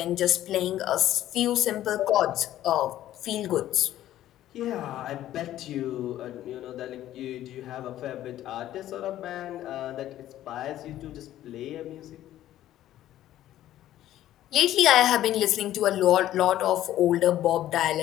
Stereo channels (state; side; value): quieter; right; 13.1 dB